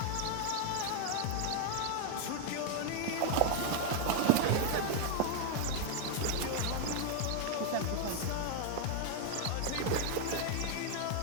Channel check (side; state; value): both; different; correlation 0.00